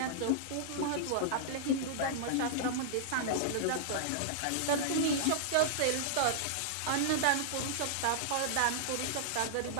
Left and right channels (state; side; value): different; both; correlation -0.01